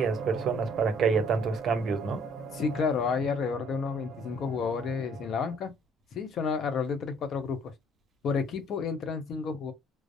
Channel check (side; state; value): both; normal; correlation 0.59